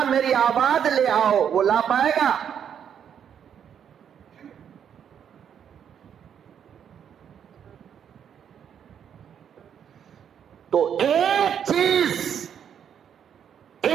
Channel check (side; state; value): left; quieter; 8.5 dB